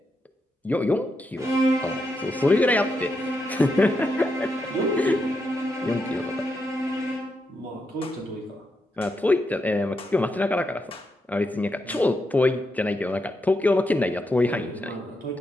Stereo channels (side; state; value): both; normal; correlation 0.83